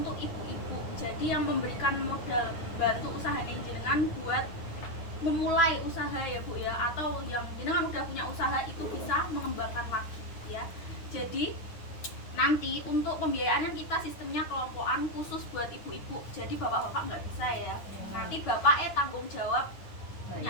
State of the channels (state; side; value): late; right; 9.6 ms